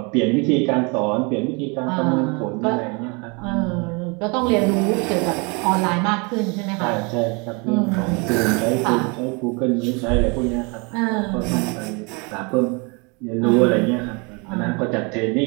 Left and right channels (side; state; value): left; quieter; 30.8 dB